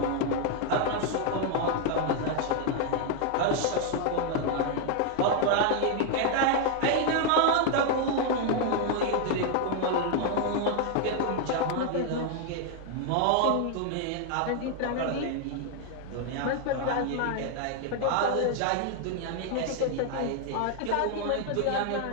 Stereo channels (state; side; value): different; both; correlation 0.00